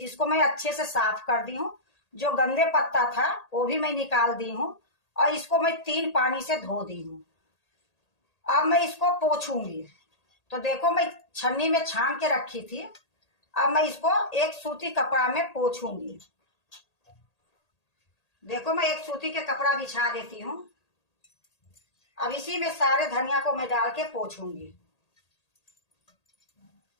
मैं अच्छे से साफ कर दी हूँ। जो गंदे पत्ता था वो भी मैं निकाल दी हूँ और इसको मैं 3 पानी से धो दी हूँ। अब मैं इसको पोंछूंगी। तो देखो मैं छन्नी में छान के रखी थी। अब मैं इसको एक सूती कपड़ा में पोंछूंगी। देखो मैं एक सूती के कपड़ा बिछा देती हूँ। अब इसी में सारे धनिया को मैं डाल के पोंछूंगी।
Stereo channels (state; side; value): late; right; 1.8 ms